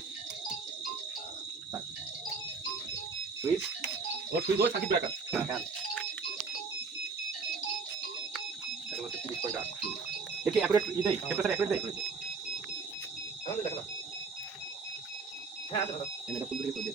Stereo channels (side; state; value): left; quieter; 4.7 dB